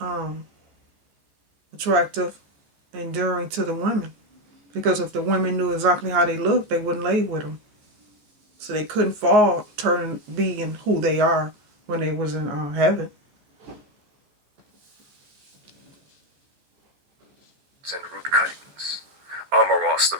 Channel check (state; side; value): late; left; 14 ms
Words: attractive, enduring to the women. Because if the women knew exactly how they looked, they wouldn't lay with them. So they couldn't fall, turn being who they are when they was in heaven. And root cuttings. Amoros, the